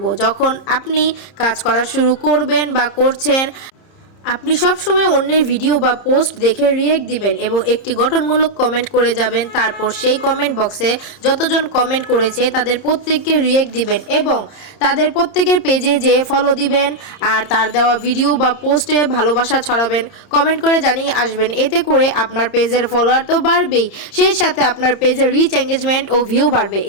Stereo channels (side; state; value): right; late; 30 ms